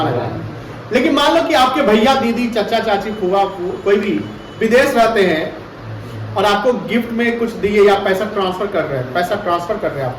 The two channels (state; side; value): identical; both; correlation 1.00